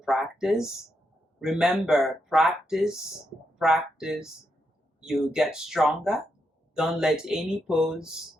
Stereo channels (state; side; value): normal; both; correlation 0.82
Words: Remember, practice, you get stronger. Don't let any pose